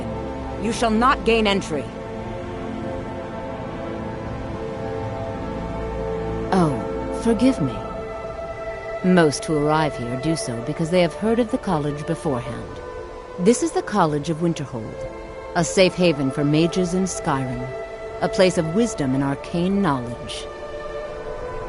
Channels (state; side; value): identical; both; correlation 1.00